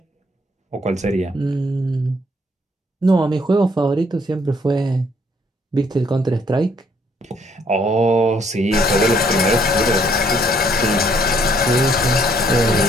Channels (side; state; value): both; normal; correlation 0.66